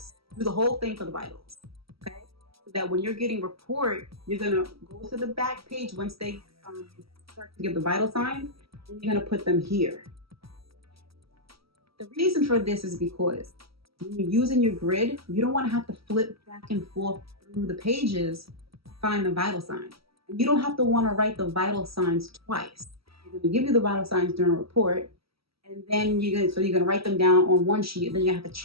Do the whole thing for the vitals. Okay? So that when you're getting report, you're going to go to the back page once they start to give the vital signs, and you're going to put them here. The reason for this is because when you're using your grid, you don't want to have to flip back and forth through the pages to find the vital sign. And you don't have to want to write the vital signs twice. They're going to give you the vital signs during a report, and then you're going to write them down on one sheet, and then you have to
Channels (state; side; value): late; left; 0.76 ms